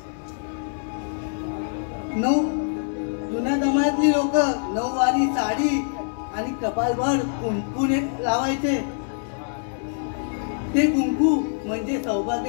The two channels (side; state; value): right; silent; digital silence